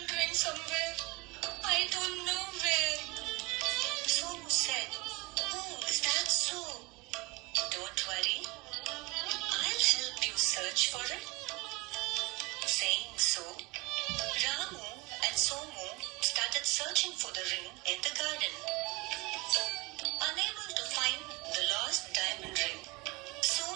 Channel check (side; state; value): left; quieter; 25.5 dB